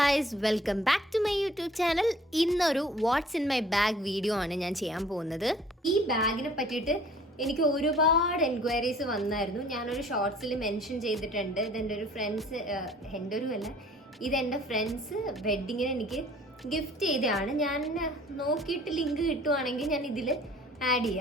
welcome back to my YouTube channel. ഇന്നൊരു what's in my bag video ആണ് ഞാൻ ചെയ്യാൻ പോകുന്നത്. ഈ ബാഗിനെ പറ്റിയിട്ട് എനിക്ക് ഒരുപാട് എൻക്വയറീസ് വന്നായിരുന്നു. ഞാനൊരു ഷോർട്സിൽ മെൻഷൻ ചെയ്തിട്ടുണ്ട്. ഇതെൻ്റെ ഒരു ഫ്രണ്ട്സ്, എൻ്റെ ഒരു അല്ല, ഇതെൻ്റെ ഫ്രണ്ട്സ് വെഡ്ഡിങ്ങിന് എനിക്ക് ഗിഫ്റ്റ് ചെയ്തതാണ്. ഞാൻ നോക്കിയിട്ട് ലിങ്ക് കിട്ടുവാണെങ്കിൽ ഞാൻ ഇതിൽ ആഡ്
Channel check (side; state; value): both; normal; correlation 0.53